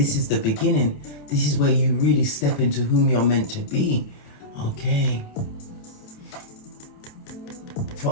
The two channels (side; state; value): right; late; 28 ms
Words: is the beginning. This is where you really step into whom you're meant to be. Okay.